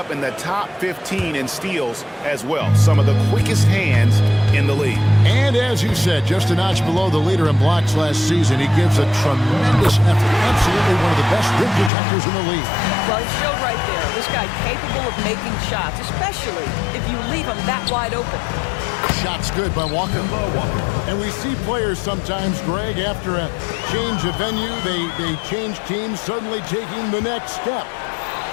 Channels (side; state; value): right; drops out; at 11.9 s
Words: in the top 15 in steals as well. Some of the quickest hands in the league. And as you said, just a notch below the leader in blocks last season. He gives a tremendous effort. Absolutely one of the best rim protectors in the league. Well, he showed right there. This guy capable of making shots, especially if you leave him that wide open. Shots good by Walker. And we see players sometimes, Greg, after a change of venue, they change teams, suddenly taking the next step.